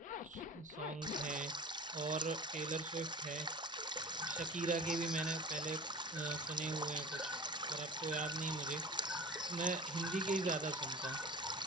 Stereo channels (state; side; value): normal; both; correlation 0.35